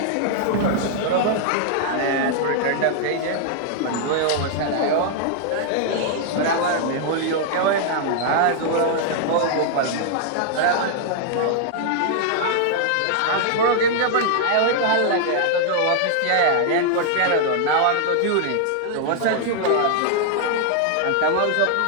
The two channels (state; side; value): different; both; correlation -0.01